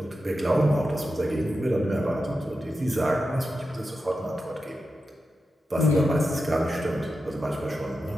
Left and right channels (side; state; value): both; normal; correlation 0.90